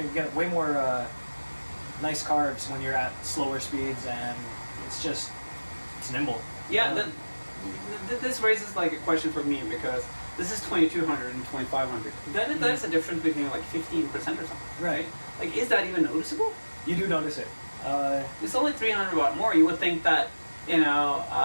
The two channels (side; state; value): both; inverted; correlation -1.00